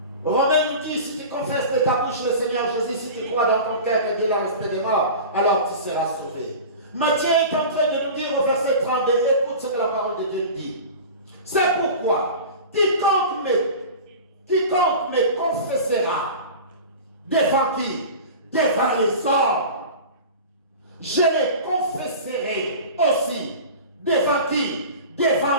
Romains nous dit, si tu confesses de ta bouche le Seigneur Jésus, si tu crois dans ton cœur que Dieu l'a resté des morts, alors tu seras sauvé. Matthieu est en train de nous dire au verset 32, écoute ce que la parole de Dieu nous dit. C'est pourquoi, quiconque me confessera, devant qui? Devant les hommes. Je les confesserai aussi. Devant qui?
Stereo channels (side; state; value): both; inverted; correlation -0.34